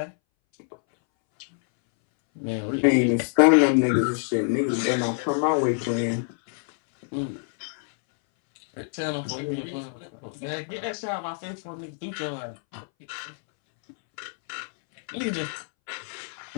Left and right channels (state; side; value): silent; right; 61 dB below the other